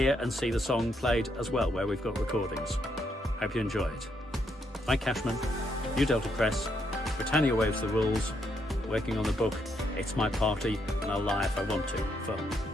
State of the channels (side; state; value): both; normal; correlation 0.76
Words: and see the song played as well, where we've got recordings. Hope you enjoy it. Mike Cashman, New Delta Press, Britannia Waves the Rules, working on the book It's My Party and I'll Lie If I Want To, for